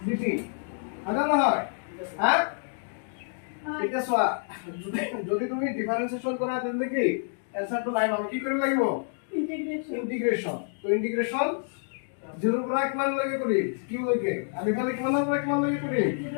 dt আধা না হয় হ্যাঁ এটা সোয়া যদি তুমি ডিফারেন্সিয়েশন করা দেন কি অ্যানসার তো নাই আমি কি করে লাগিব ইন্টিগ্রেশন তো ইন্টিগ্রেশন 0 পৰা কিমান লাগে কৰি কি লাগে আমি খালি কিমান পৰা কিমান লাগে কৰি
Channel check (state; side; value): silent; right; digital silence